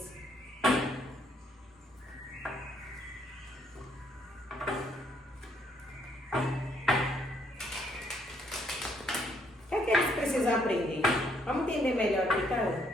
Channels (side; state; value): both; normal; correlation 0.70